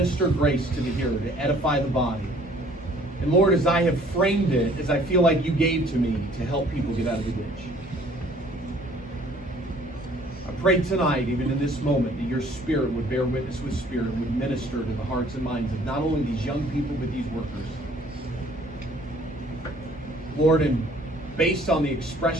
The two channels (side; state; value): both; normal; correlation 0.56